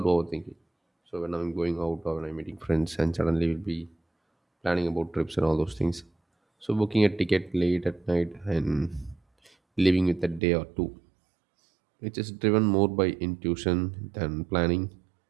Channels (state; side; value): drops out; left; at 10.4 s